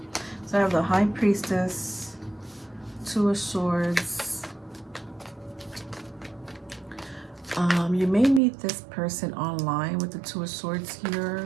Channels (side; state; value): left; drops out; at 8.4 s